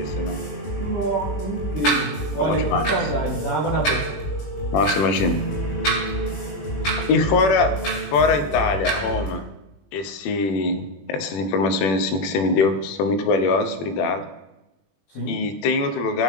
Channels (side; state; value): right; late; 21 ms